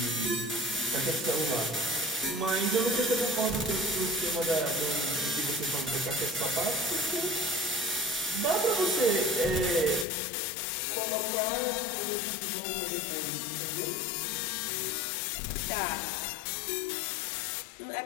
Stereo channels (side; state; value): right; drops out; at 10.1 s